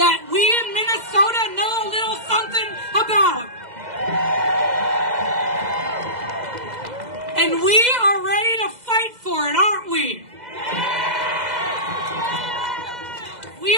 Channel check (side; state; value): left; late; 2.0 ms